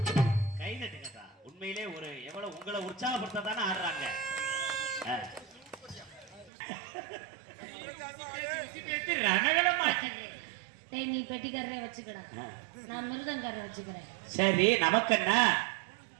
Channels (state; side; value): drops out; left; at 6.5 s